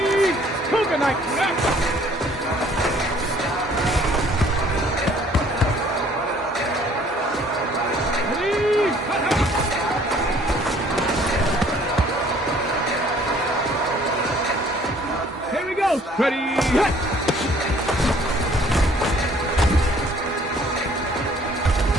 Cougar night. Ready? Here we go. Ready? Hit.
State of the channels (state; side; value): normal; both; correlation 0.57